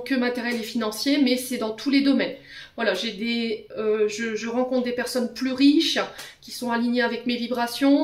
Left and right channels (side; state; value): both; identical; correlation 1.00